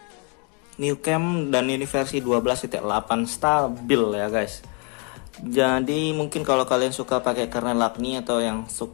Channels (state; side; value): quieter; right; 35.8 dB